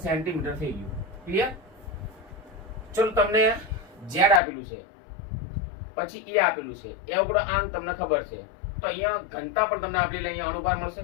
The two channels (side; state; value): right; drops out; at 4.4 s